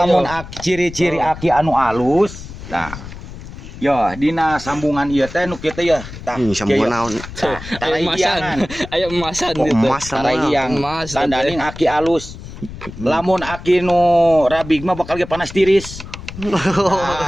ciri-ciri aki anu alus. Nah. Yo dina sambungan ieu teh nu kieu teh ya. Tah sambungan naon? Aya emasan gitu. Emas yang tandaning aki alus. Lamun aki nu rabig mah bakal ge panas tiris.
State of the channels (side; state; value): left; noise; rumble, 13 dB below the sound